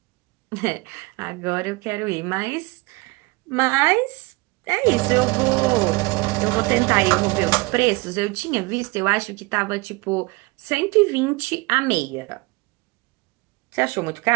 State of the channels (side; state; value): left; quieter; 24.7 dB